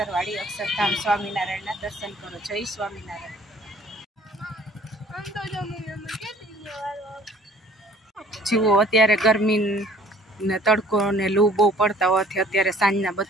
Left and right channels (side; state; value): both; normal; correlation 0.54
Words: अक्षरधाम स्वामीनारायण दर्शन करो। जय स्वामीनारायण। जीवो अत्यारे गरमी ने तड़को ने लू बहु पड़ता होवाथी अत्यारे सांजना